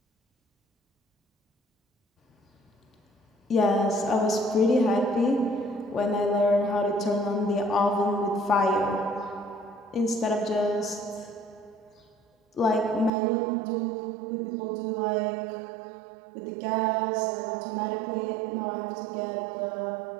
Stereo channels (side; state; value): left; drops out; at 13.1 s